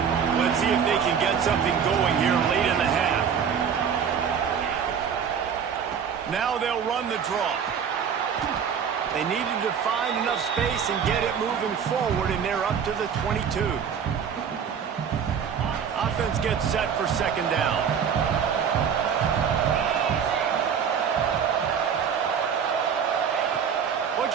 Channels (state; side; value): quieter; left; 7.4 dB